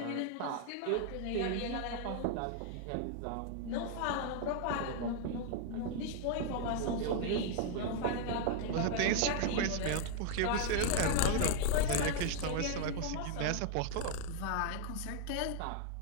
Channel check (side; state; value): both; different; correlation 0.00